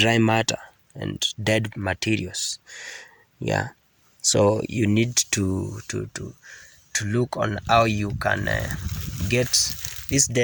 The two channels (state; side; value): identical; both; correlation 1.00